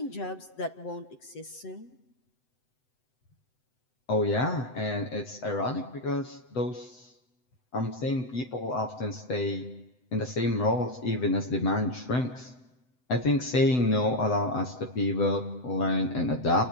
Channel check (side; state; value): right; late; 7.9 ms